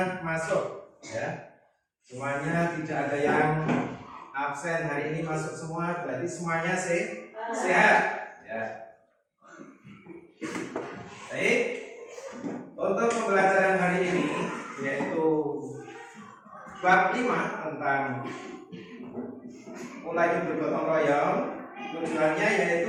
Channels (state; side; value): identical; both; correlation 1.00